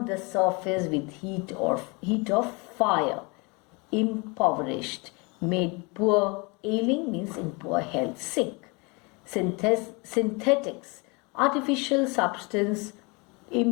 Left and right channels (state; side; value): quieter; right; 29.0 dB